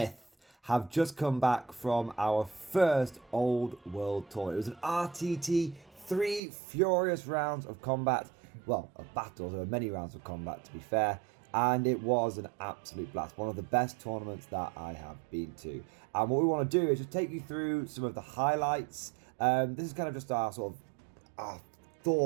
have just come back from our first Old World tour. It was an RTT, 3 furious rounds of combat. Well, of battles, there were many rounds of combat to be fair. And it was an absolute blast. One of the best tournaments that I have been to. And what we want to do is just take you through some of the highlights. This is kind of just our sort of our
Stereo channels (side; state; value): left; drops out; at 6.4 s